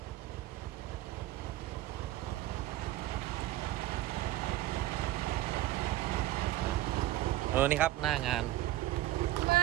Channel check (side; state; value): left; quieter; 15.3 dB